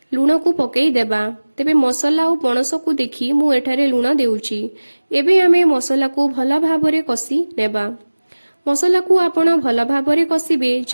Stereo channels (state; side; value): inverted; both; correlation -1.00